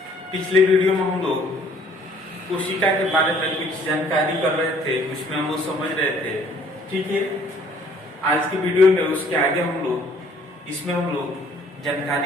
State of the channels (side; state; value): both; normal; correlation 0.59